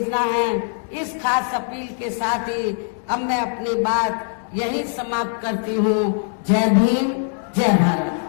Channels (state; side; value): silent; right; digital silence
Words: है। इस खास अपील के साथ ही अब मैं अपनी बात यहीं समाप्त करती हूँ। जय भीम, जय भारत।